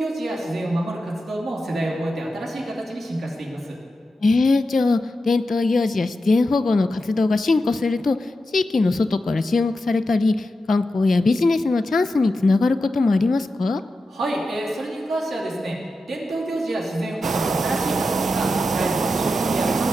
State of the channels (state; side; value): normal; both; correlation 0.90